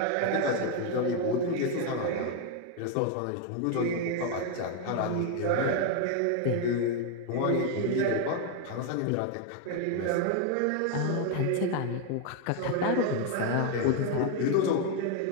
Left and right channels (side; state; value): both; different; correlation 0.01